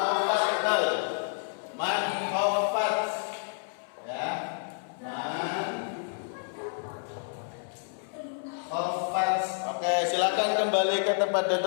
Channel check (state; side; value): silent; right; 57 dB below the other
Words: man khawfat. Ya. Oke, silakan kembali ke tempat